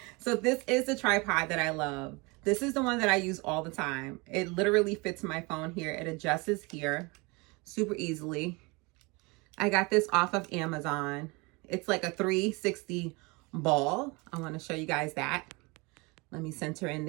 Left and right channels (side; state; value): left; quieter; 26.9 dB